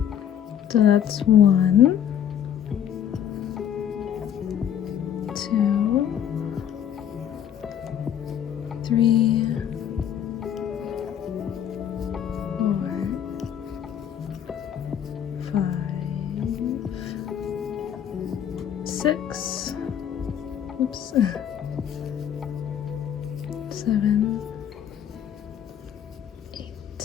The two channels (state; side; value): quieter; right; 9.4 dB